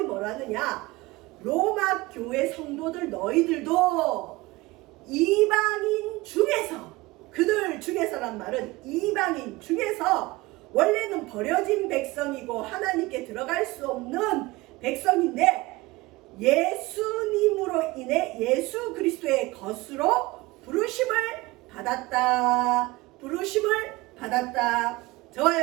뭐라 하느냐? 로마 교회 성도들 너희들도 이방인 중에서, 그들 중에서란 말은 이방인 중에서 원래는 버려진 백성이고 하나님께 들어갈 수 없는 백성인데 예수님으로 인해 예수 그리스도의 것으로 부르심을 받았다. 부르심을 받았다. 저와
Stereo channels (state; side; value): quieter; left; 21.0 dB